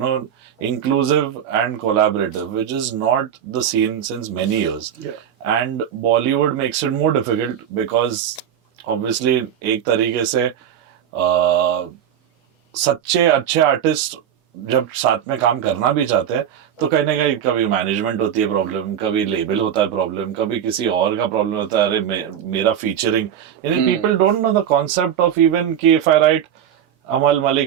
know, inclusive and collaborative, which is not the scene since many years. Yeah. And Bollywood makes it more difficult because obviously एक तरीके से सच्चे अच्छे artist जब साथ में काम करना भी चाहते हैं तो कहीं ना कहीं कभी मैनेजमेंट होती है प्रॉब्लम, कभी लेबल होता है प्रॉब्लम, कभी किसी और का प्रॉब्लम होता है, अरे मेरा फीचरिंग. यानी people don't know the concept of even कि if I write Amaal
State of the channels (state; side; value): quieter; left; 9.4 dB